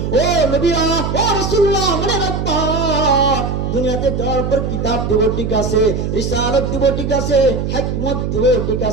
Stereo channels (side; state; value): right; noise; hum, 2 dB below the sound